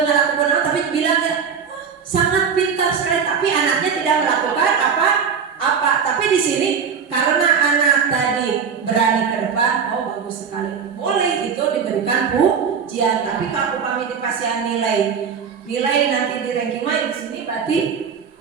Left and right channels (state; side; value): quieter; left; 6.5 dB